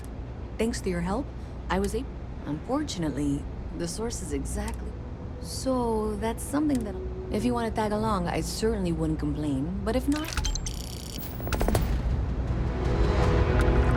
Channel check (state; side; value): identical; both; correlation 1.00